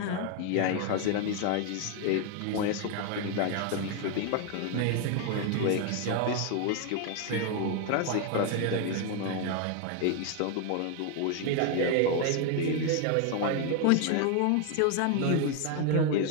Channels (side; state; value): both; different; correlation 0.01